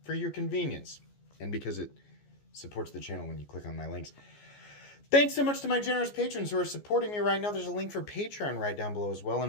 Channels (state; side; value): late; right; 14 ms